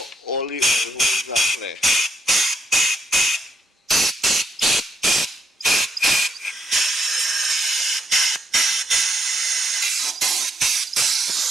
all the oil holes are clear.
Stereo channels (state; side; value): normal; both; correlation 0.76